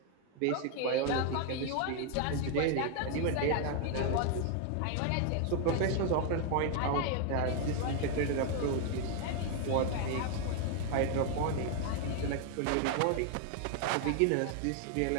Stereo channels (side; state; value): both; different; correlation 0.00